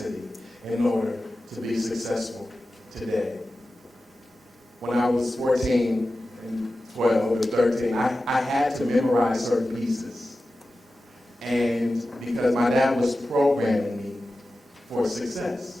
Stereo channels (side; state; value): both; normal; correlation 0.94